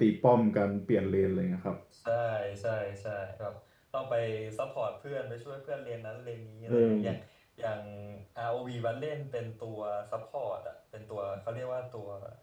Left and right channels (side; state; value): both; identical; correlation 1.00